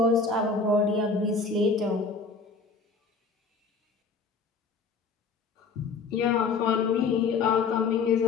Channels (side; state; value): right; quieter; 4.6 dB